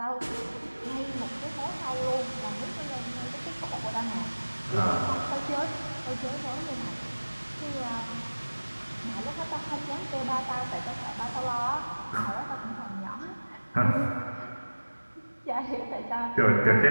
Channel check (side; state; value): both; inverted; correlation -1.00